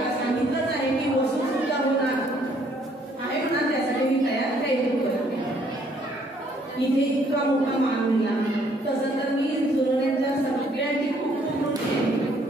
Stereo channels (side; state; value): both; normal; correlation 0.65